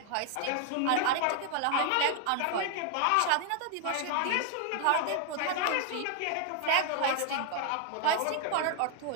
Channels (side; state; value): both; different; correlation 0.00